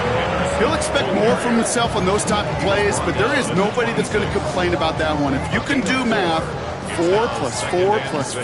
He'll expect more from himself on those type of plays, but there is nobody that's going to complain about that one. If you can do math, 4 plus 4 plus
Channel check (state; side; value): identical; both; correlation 1.00